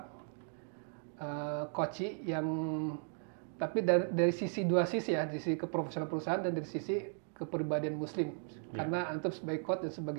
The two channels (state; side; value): silent; left; 53 dB below the other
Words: coach yang tapi dari sisi dua sisi ya, dari sisi keprofesional perusahaan dan dari sisi kepribadian muslim. Karena Antum sebagai coach dan